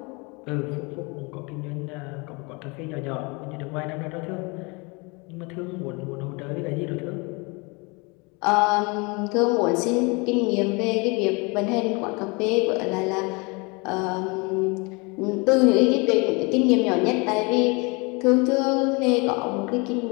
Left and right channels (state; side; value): quieter; right; 28.8 dB